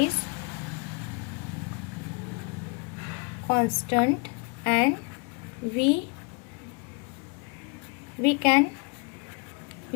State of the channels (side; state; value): right; quieter; 32.5 dB